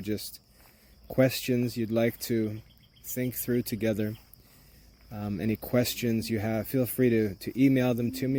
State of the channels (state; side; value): identical; both; correlation 1.00